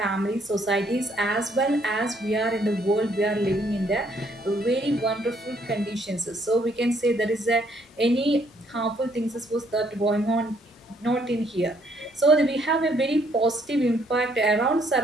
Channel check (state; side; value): normal; both; correlation 0.68